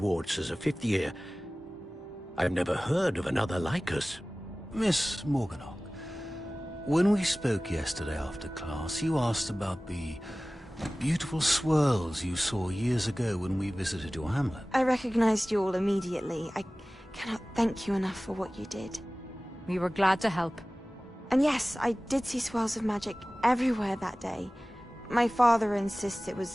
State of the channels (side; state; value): both; normal; correlation 0.98